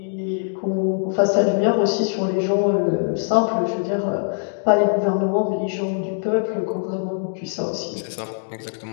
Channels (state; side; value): silent; right; digital silence